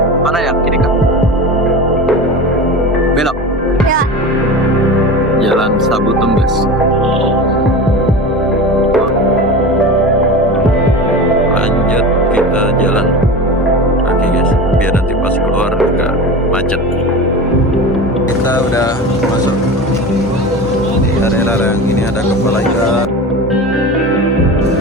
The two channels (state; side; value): normal; both; correlation 0.30